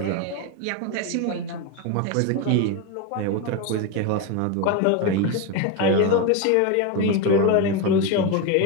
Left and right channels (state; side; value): different; both; correlation 0.03